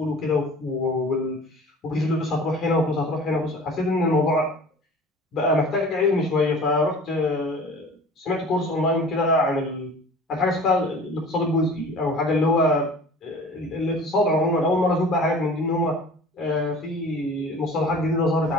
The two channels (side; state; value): both; normal; correlation 0.43